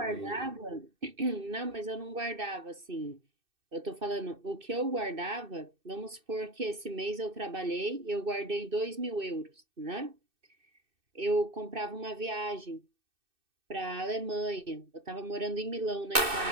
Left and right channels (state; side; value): late; left; 2.6 ms